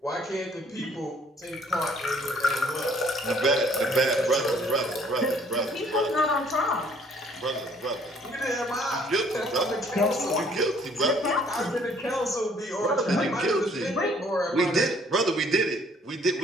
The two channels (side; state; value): both; normal; correlation 0.61